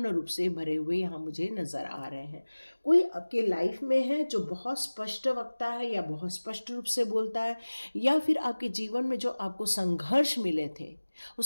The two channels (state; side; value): inverted; both; correlation -1.00